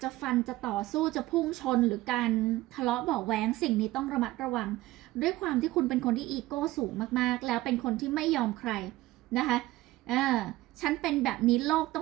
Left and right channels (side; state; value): left; quieter; 17.6 dB